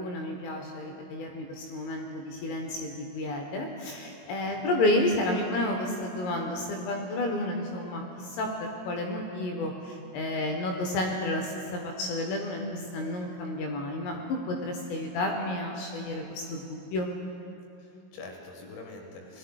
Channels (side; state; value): right; late; 22 ms